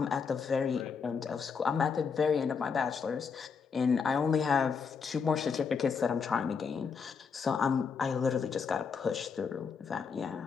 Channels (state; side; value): quieter; right; 5.8 dB